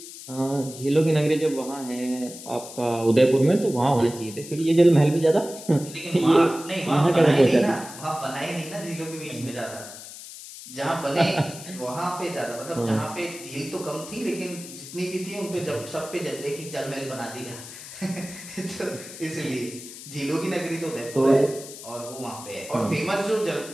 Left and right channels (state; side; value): noise; left; hiss, 14 dB below the sound